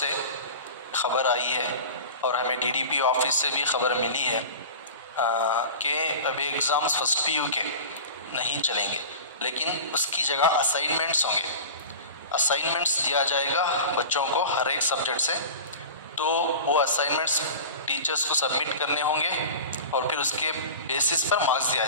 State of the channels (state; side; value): inverted; both; correlation -0.34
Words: ख़बर आई है और हमें डीडीपी ऑफिस से भी ख़बर मिली है कि अभी एग्ज़ाम्स फर्स्ट पीयू के नहीं चलेंगे, लेकिन उसकी जगह असाइनमेंट्स होंगे। असाइनमेंट्स दिया जाएगा बच्चों को हर एक सब्जेक्ट से, तो वो असाइनमेंट्स टीचर्स को सबमिट करने होंगे और फिर उसके बेसिस पर मार्क्स दिया